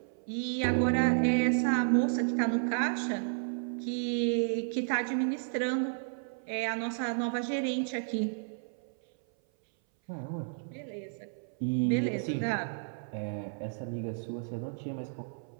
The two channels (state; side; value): silent; left; 56 dB below the other